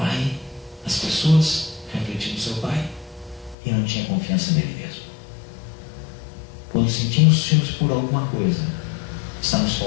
as pessoas, refletindo no seu Pai, e não tinha confiança nele mesmo. Quando sentimos ciúmes por alguma coisa, estamos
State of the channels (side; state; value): right; drops out; at 3.6 s